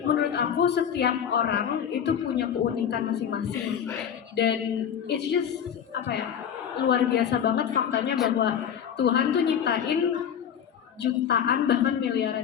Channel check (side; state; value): right; quieter; 8.5 dB